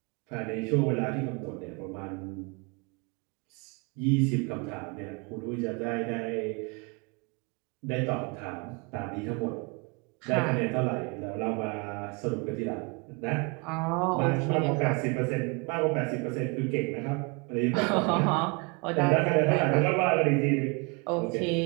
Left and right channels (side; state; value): left; quieter; 30.8 dB